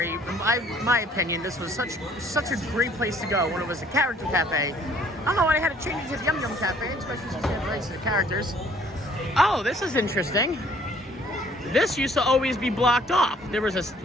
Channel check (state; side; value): normal; both; correlation 0.59